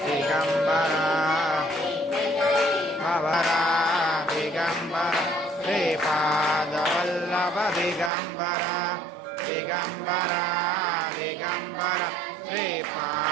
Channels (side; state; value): left; drops out; at 8.1 s